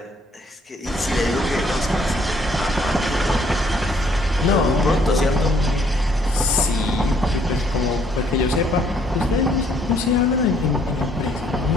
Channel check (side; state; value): both; normal; correlation 0.65